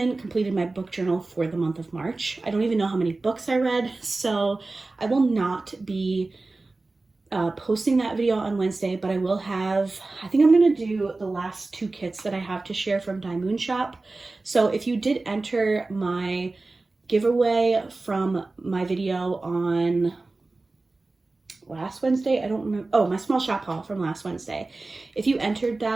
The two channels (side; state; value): left; quieter; 3.3 dB